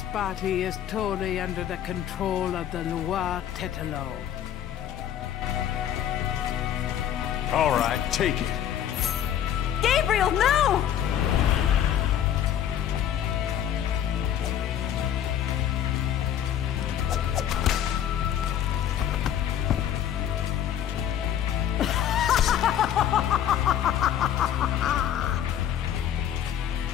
body is totally under the control of the Loire Tetelo. All right, take it. Gabriel, no!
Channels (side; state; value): right; quieter; 10.2 dB